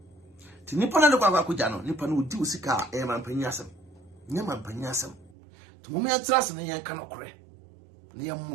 ti nipa na de akwakuja no nipa no odi usika mampanyi asem nya mampanyi asem to mum ya trase ne yanka no kore ne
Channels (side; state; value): left; drops out; at 5.3 s